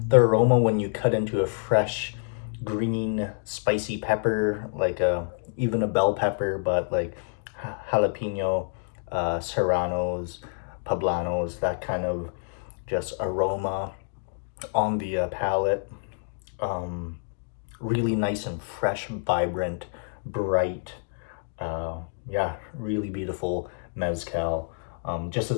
aroma when you cut into a fresh green spicy pepper, like even a bell pepper, but like jalapeno, serranos, poblanos, that kind of just aroma on the palate. Really nice and fresh, vibrant, bright. Yeah, really beautiful mezcal. Just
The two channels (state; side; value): silent; right; digital silence